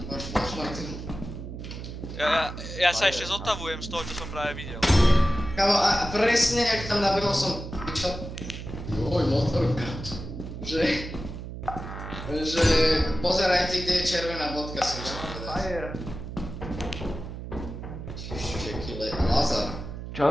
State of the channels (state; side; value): noise; right; hum, 9 dB below the sound